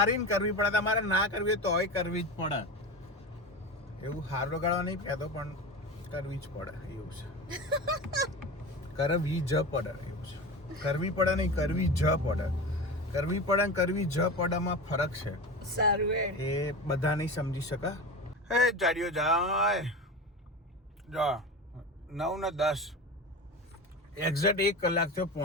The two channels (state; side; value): normal; both; correlation 0.27